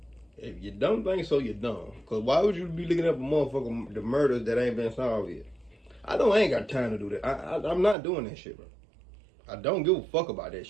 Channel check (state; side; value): drops out; left; at 8.0 s